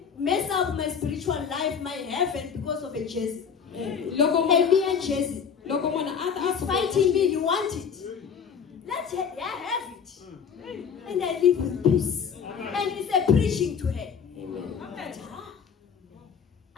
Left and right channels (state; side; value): quieter; right; 6.8 dB